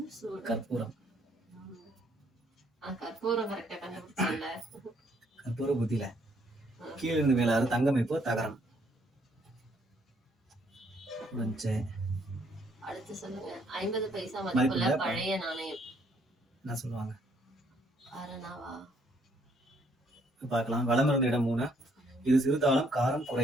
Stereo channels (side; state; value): both; normal; correlation 0.68